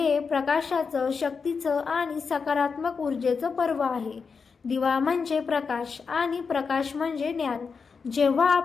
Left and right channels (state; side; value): quieter; right; 5.3 dB